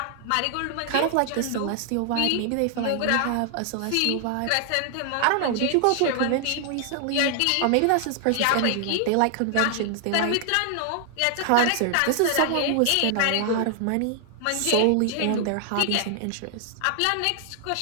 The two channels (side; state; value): both; different; correlation 0.00